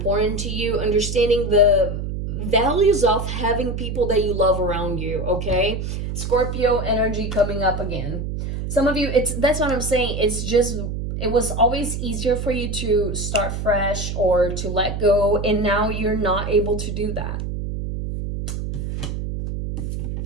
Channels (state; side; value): noise; right; hum, 4 dB below the sound